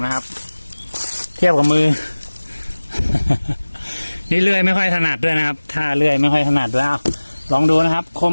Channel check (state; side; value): inverted; both; correlation -1.00